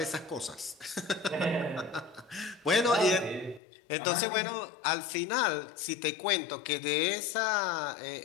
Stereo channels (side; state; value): right; drops out; at 3.6 s